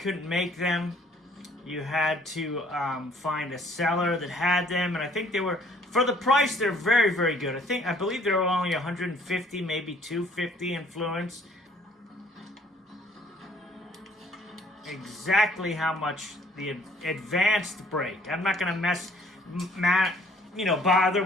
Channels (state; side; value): normal; both; correlation 0.59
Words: make them. You had to find a seller that had them, and I think they were, for the price, they're very, very good. I believe they were only 150, maybe 250 influence. Exactly how much the advanced brake. I'm not gonna bother